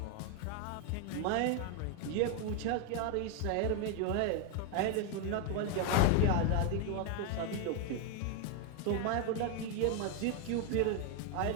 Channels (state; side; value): different; both; correlation 0.01